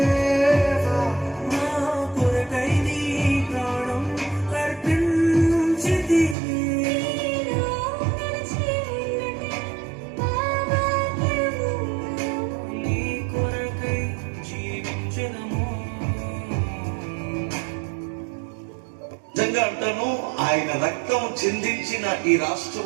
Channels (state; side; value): drops out; left; at 6.4 s